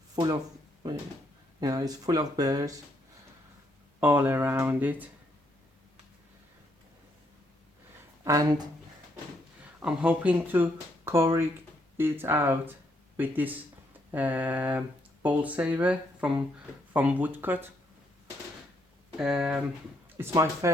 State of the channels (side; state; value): both; normal; correlation 0.74